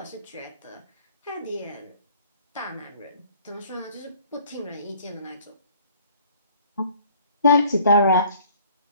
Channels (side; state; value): both; inverted; correlation -0.54